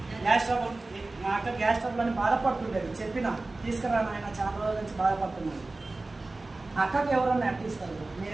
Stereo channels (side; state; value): left; quieter; 3.2 dB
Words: గ్యాస్ ట్రబుల్, మా అక్క గ్యాస్ ట్రబుల్ అని బాధపడుతుండేది. చెప్పిన తీసుకురా ఆయన, చాలా రోజుల నుంచి బాధపడుతున్నాడు. అక్కకి ఎవరన్నా అట్టిస్తారు,